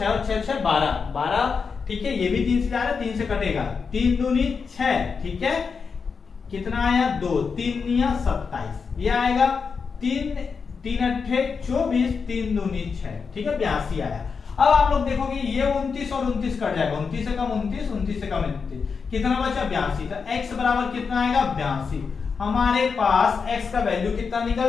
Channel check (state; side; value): quieter; right; 5.5 dB